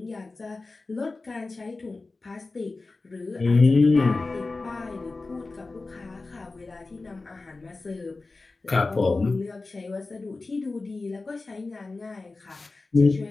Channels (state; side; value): quieter; right; 3.6 dB